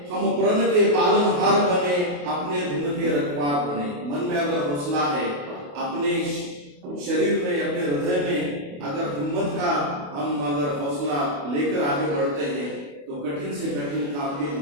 हम प्रण के पालनहार बने, अपने धुन के रखवार बने। मन में अगर हौसला है, अपने शरीर में, अपने हृदय में अगर हिम्मत का हम अगर हौसला लेकर आगे बढ़ते हैं तो कठिन से कठिन काम भी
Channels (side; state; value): left; late; 28 ms